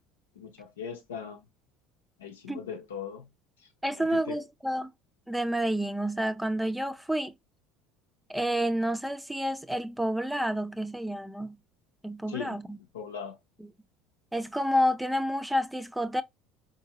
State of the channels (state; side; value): normal; both; correlation 0.91